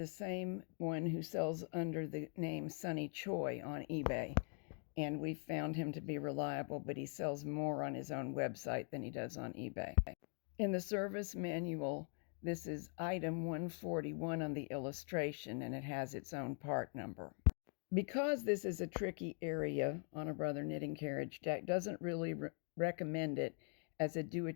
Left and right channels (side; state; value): right; quieter; 38.4 dB